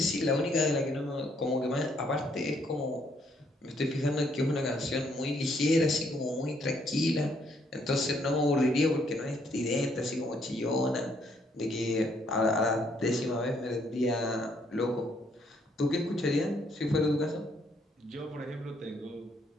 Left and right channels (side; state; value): both; normal; correlation 0.69